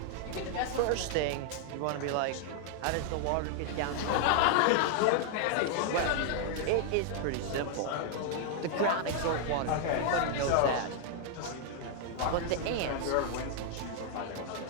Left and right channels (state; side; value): different; both; correlation 0.00